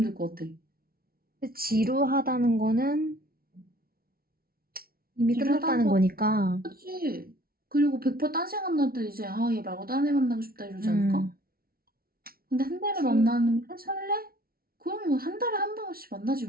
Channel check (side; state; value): left; late; 0.44 ms